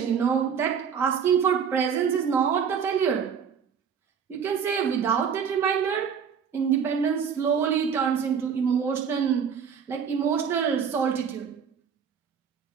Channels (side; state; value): left; quieter; 7.2 dB